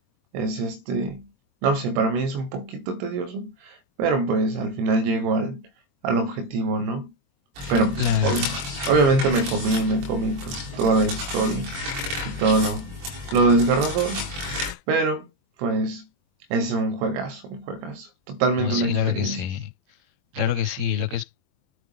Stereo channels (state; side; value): late; left; 22 ms